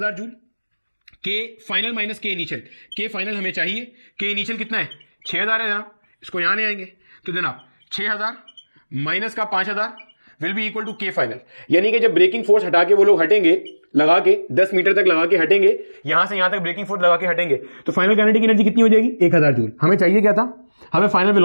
joule, K final minus K initial, K final हमें चाहिए, के इनिशियल कितना है 6000 है जनाब, इसको यहां ले आएंगे तो जनाब 6000 माइनस का 5000 विल बी इक्वल टू के फाइनल। यानी कि जब ब्रेकिंग फोर्स हटा के वो लोग हटेंगे, लगा के 10 मीटर तक लगा के हटेंगे, यहां से यहां तक ब्रेकिंग फोर्स लगा के हटेंगे, तो फाइनल काइनेटिक एनर्जी कितनी हो जाएगी 1000 जूल। हमें चाहिए क्या था, हमें फाइनल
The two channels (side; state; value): both; inverted; correlation -1.00